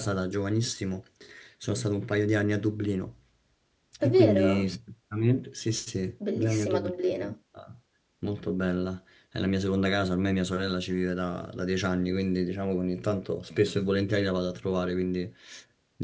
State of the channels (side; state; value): both; identical; correlation 1.00